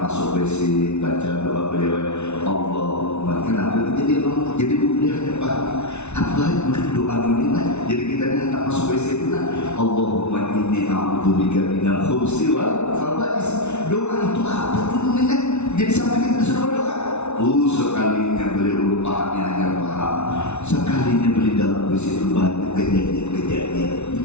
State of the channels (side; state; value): right; late; 0.81 ms